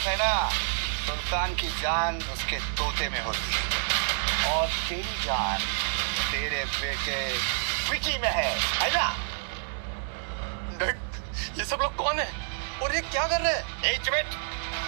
है ना, सुल्तान की जान उसके तोते में होती है और तेरी जान तेरे बेटे विकी में है ना? ये सब लोग कौन है और ये क्या कर रहे हैं?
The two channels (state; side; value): silent; left; 59 dB below the other